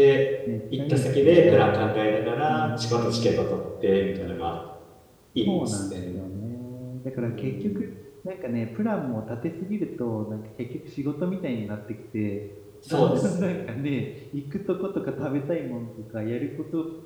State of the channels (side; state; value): both; identical; correlation 1.00